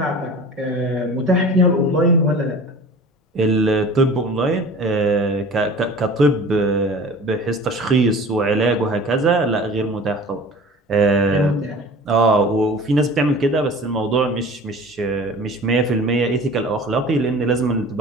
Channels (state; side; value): normal; both; correlation 0.41